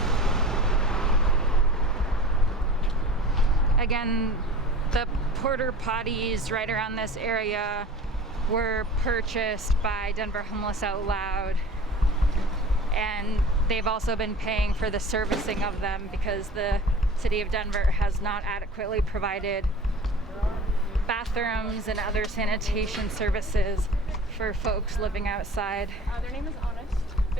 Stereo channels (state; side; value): normal; both; correlation 0.40